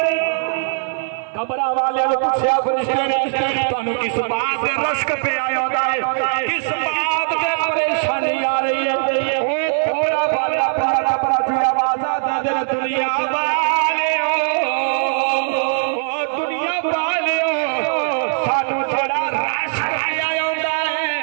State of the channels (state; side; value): silent; left; 66 dB below the other